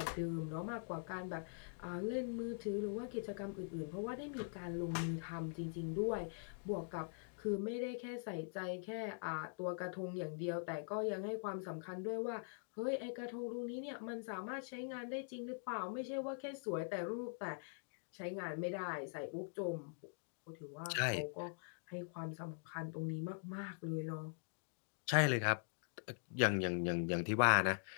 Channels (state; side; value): silent; right; digital silence